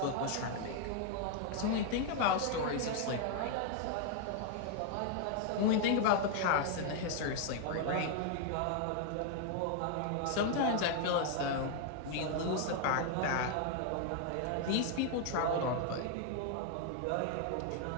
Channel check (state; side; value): different; both; correlation 0.00